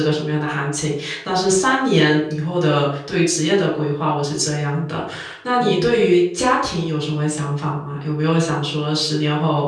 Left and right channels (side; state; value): both; identical; correlation 1.00